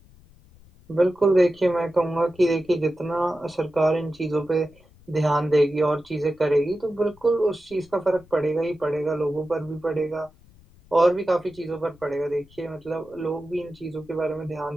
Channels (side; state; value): left; noise; rumble, 26 dB below the sound